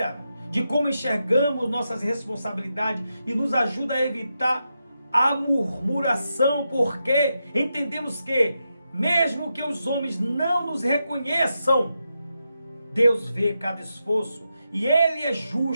de como enxergamos nossas responsabilidades e nos ajuda a evitar a murmuração, porque entendemos que, mesmo que os homens não nos reconheçam, Deus vê cada esforço e Ele é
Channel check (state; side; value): inverted; both; correlation -0.86